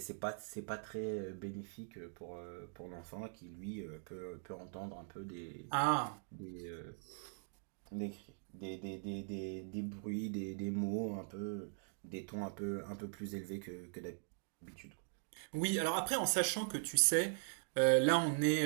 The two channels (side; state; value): left; silent; 50 dB below the other